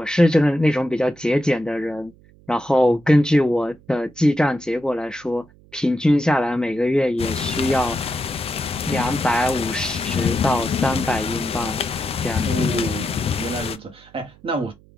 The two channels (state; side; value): noise; right; hum, 27 dB below the sound